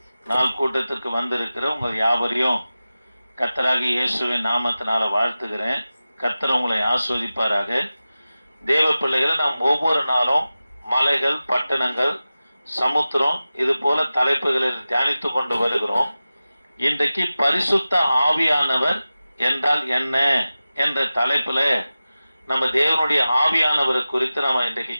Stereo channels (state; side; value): inverted; both; correlation -0.95